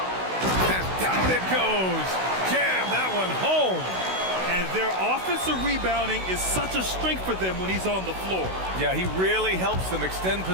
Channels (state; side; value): late; left; 16 ms